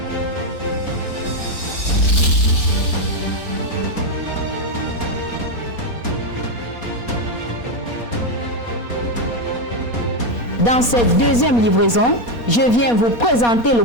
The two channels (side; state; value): right; late; 4.2 ms